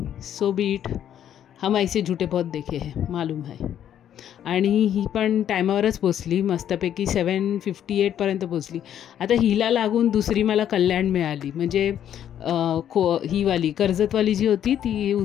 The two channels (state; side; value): quieter; right; 10.2 dB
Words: So B it. हम ऐसे झूठे बहुत देखे हैं, मालूम है. आणि ही पण टायमावरच पोचली, मस्तपैकी 7:58पर्यंत पोचली. आता हिला लागून दुसरी मला कल्याण मिळाली, म्हणजे हीवाली कर्जतवाली जी होती ती